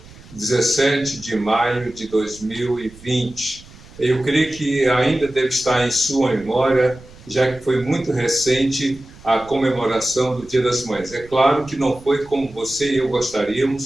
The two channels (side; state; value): right; noise; rumble, 21 dB below the sound